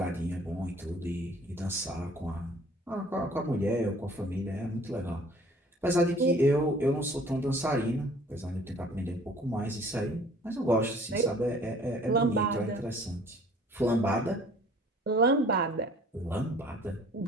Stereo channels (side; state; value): both; normal; correlation 0.53